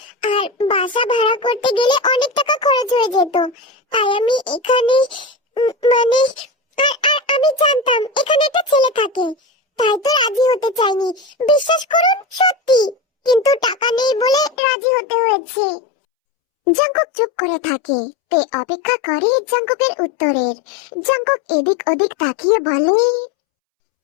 আর বাসা ভাড়া করতে গেলে অনেক টাকা খরচ হয়ে যেত। তাই আমি এখানে মানে আর আমি জানতাম এখানে একটা ছেলে থাকে, তাই তো রাজি হতে চাইনি। বিশ্বাস করুন, সত্যি। কিন্তু টাকা নেই বলে রাজি হতে হয়েছে। জাঙ্কুক চুপ করে থাকে। তে অপেক্ষা করে জাঙ্কুকের উত্তরের। জাঙ্কুক এদিক ওদিক তাকিয়ে বলে,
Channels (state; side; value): drops out; right; at 14.6 s